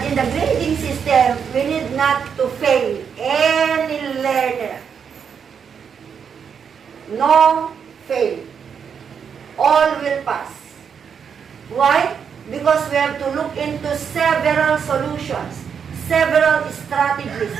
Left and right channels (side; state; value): left; quieter; 7.0 dB